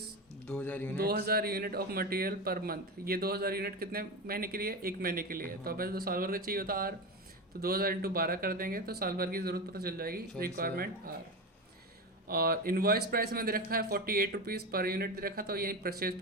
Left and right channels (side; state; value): both; normal; correlation 0.20